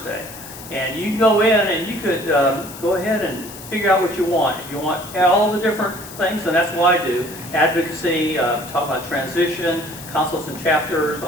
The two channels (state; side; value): noise; left; hiss, 15 dB below the sound